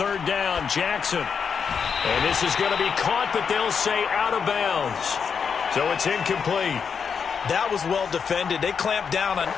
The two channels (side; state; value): right; quieter; 6.4 dB